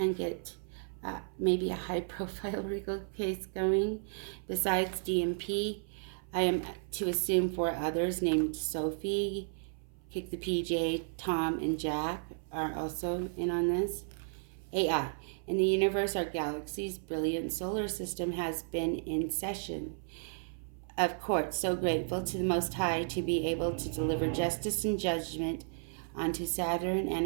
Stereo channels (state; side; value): silent; left; 55 dB below the other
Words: get maybe a high-profile legal case going. Besides DMP, I am to assume 4 others named Sophie, Kick the PJ, Tom, and Jack are also in on this. AI. In the universe, our galaxy's brilliant solar system has been in session of court. So grateful to the Most High to be able to deliver justice and judgment onto Saturn and